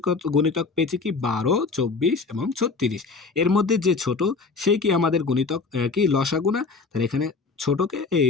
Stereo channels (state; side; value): quieter; right; 4.4 dB